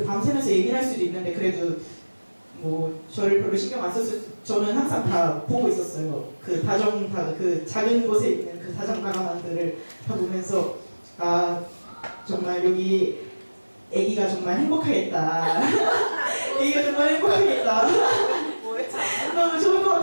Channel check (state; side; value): inverted; both; correlation -1.00